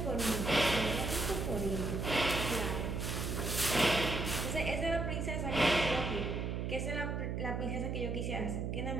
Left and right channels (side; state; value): right; noise; hum, 2 dB below the sound